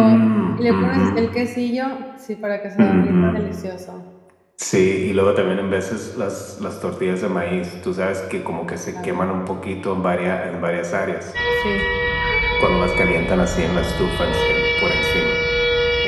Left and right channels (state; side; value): identical; both; correlation 1.00